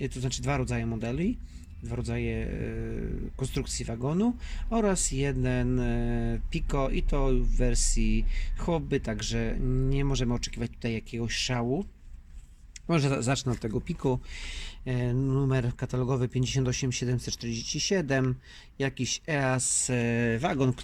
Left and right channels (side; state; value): both; identical; correlation 1.00